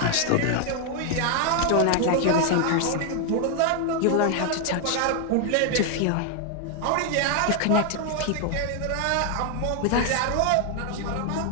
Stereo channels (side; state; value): both; different; correlation 0.00